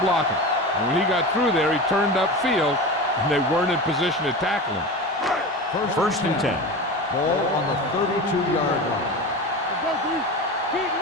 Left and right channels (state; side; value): normal; both; correlation 0.28